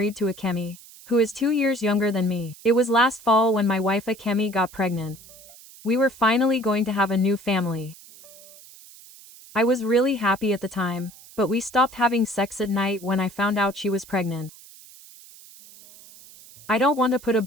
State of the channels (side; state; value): right; noise; hiss, 21 dB below the sound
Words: to Akemi, who is 2 years younger than me. It was last fall when my wife Akemi got pregnant. We were finally going to have a new family. I was really happy at the time, but we stopped having sex at night when I found out she was pregnant. I don't want to put a